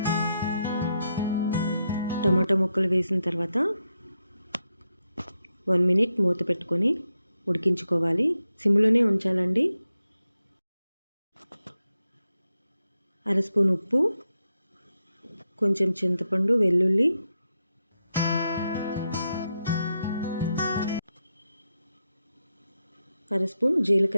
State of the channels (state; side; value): inverted; both; correlation -0.86